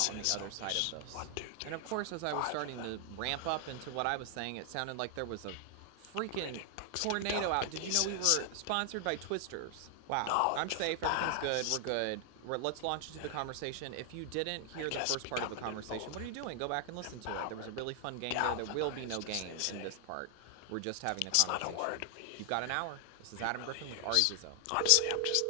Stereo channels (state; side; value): different; both; correlation 0.00